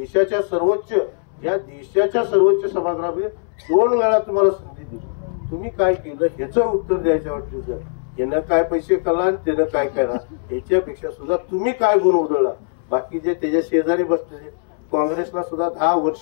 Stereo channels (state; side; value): silent; right; 65 dB below the other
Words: सर्वोच्च सभागृहामध्ये 2 वेळा तुम्हाला संधी दिली. तुम्ही काय केलं ह्याचं उत्तर द्यायच्यावर तुझं यानं काय पैसे कळला आणि त्यानं काय केला ह्याच्यापेक्षा सुद्धा तुम्ही काय गुण उधळला. बाकी जे त्याच्या शेजारी बसले काँग्रेसला सुद्धा 10